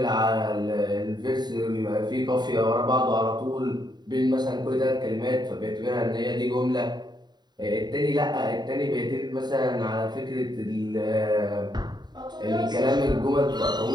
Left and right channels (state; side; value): late; left; 0.20 ms